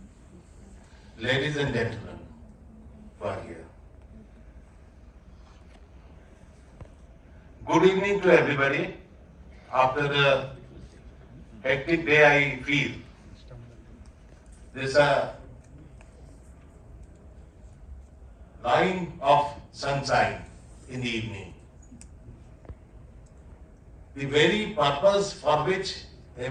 ladies and gentlemen who are here. Good evening to everybody. After a hectic day, I feel there's a line of sunshine in the evening. The very purpose for which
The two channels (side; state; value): both; identical; correlation 1.00